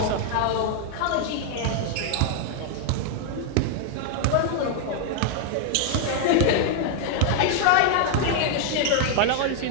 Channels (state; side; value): different; both; correlation 0.00